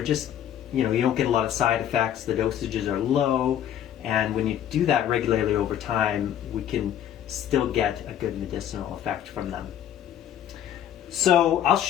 just, you don't get a lot of side effects, the dosages are low, and when you do that regularly over time, we can still get a good medicinal effect from them. So I'm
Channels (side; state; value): right; quieter; 10.5 dB